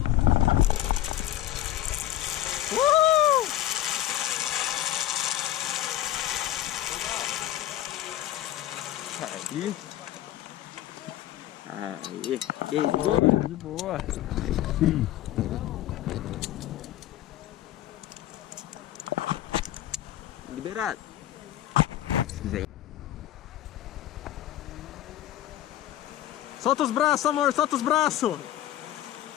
Aí. Aí. E aí, de boa? De boa. Liberado. Se quiser. Solta os braços, amor, solta os braços.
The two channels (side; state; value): right; quieter; 13.5 dB